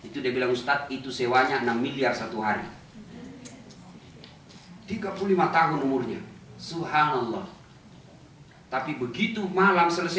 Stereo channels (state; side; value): identical; both; correlation 1.00